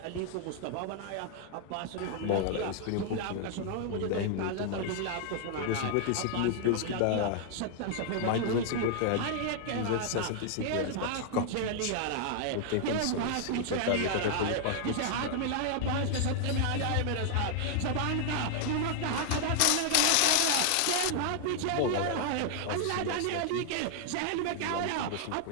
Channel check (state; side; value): different; both; correlation 0.00